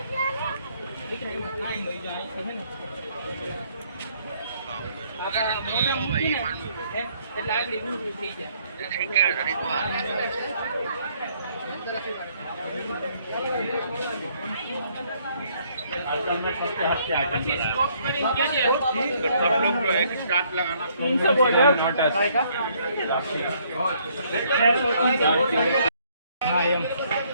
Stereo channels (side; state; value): both; inverted; correlation -0.66